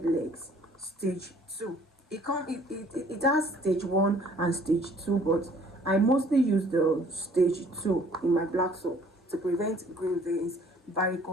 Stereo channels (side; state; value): both; normal; correlation 0.56